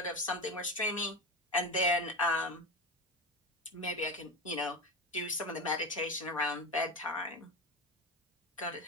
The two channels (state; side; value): normal; both; correlation 0.21